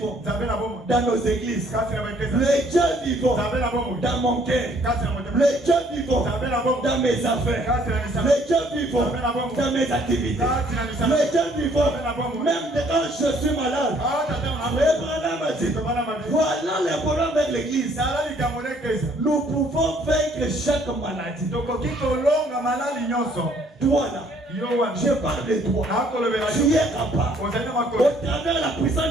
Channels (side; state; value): both; normal; correlation 0.62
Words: dans nos églises. Les dieux vivants dans mon cœur. Les dieux vivants dans mes affaires. Les dieux vivants dans mes activités. Les dieux vivants même quand je suis malade. Voilà le problème avec l'église. Nous pouvons vaincre chaque maladie. Toi là, je parle de toi. Tu es capable. Au travers de la puissance